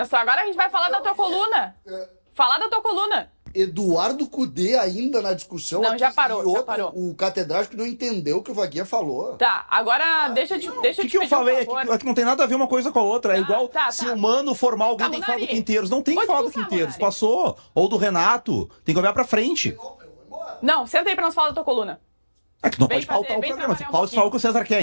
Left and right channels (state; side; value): inverted; both; correlation -1.00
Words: Agora a gente vai falar da tua coluna. Falar da tua coluna. Eduardo Cudê ainda na discussão. Não, aqui, já parou, e outro, já parou. O catedrático não entendeu o que o Vaguinha falou. Tá, agora deixa eu te O pedir que eu falei um é favor. que não tem nada a ver uma coisa com a outra. É igual se tá. o Mano formar alguém, Tá, tem que falar do Munari. Quinteiros. Não tem que Pode falar do expulsar, Quinteiros. Munari. Passou. Ou do Renato. Tem que olhar pra frente. Não, senta aí pra nós falar da tua coluna. É que não Vem pode faltar fazer, o vem programa. trabalhar um Fala só o que o César quer,